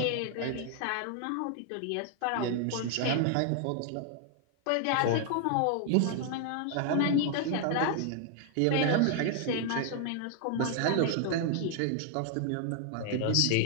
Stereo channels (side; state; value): both; different; correlation 0.00